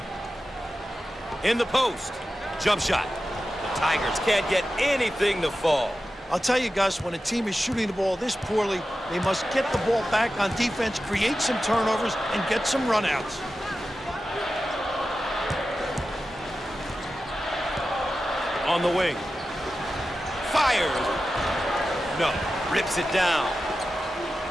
In the post. Jump shot. The Tigers can't get anything to fall. I'll tell you, Gus, when a team is shooting the ball this poorly, they must get the ball back on defense, create some turnovers, and get some runouts. On the wing. Fires. No. Rips it down.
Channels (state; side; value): normal; both; correlation 0.93